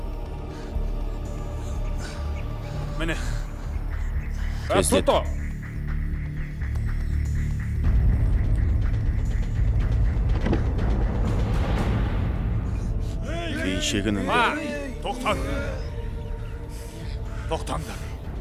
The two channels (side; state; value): both; identical; correlation 1.00